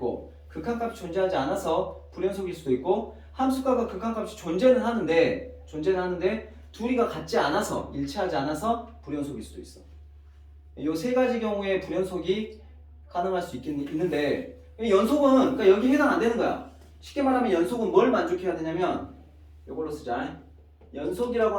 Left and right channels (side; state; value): both; identical; correlation 1.00